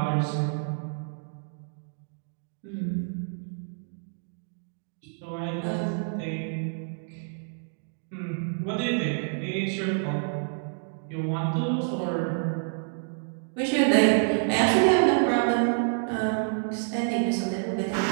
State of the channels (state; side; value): silent; left; digital silence